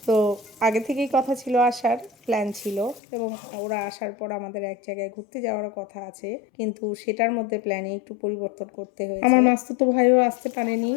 তো আগে থেকেই কথা ছিল, আসার প্ল্যান ছিল, এবং ওরা আসার পর আমাদের এক জায়গায় ঘুরতে যাওয়ারও কথা আছে, কিন্তু সেটার মধ্যে প্ল্যানে একটু পরিবর্তন করতে হয়েছে। আমার মাস্তুতো ভাইও আসতে পারেনি,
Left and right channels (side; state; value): right; drops out; at 3.0 s